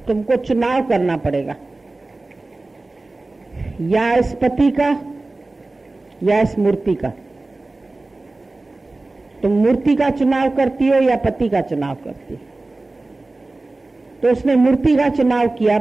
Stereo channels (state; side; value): quieter; left; 3.1 dB